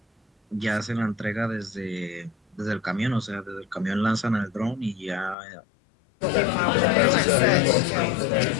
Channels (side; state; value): right; drops out; at 5.4 s